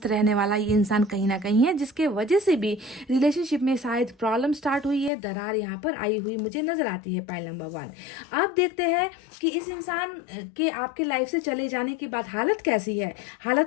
रहने वाला ये इंसान कहीं ना कहीं है, जिसके वजह से भी रिलेशनशिप में शायद प्रॉब्लम स्टार्ट हुई है, दरार यहाँ पर आई हुई मुझे नज़र आती है। पॉइंट नंबर 1, आप देखते हैं कि इस इंसान के आपके लाइफ से चले जाने के बाद हालत कैसी है,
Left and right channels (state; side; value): drops out; right; at 5.1 s